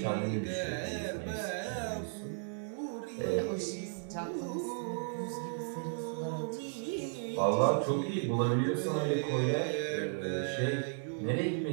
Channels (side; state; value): left; silent; 55 dB below the other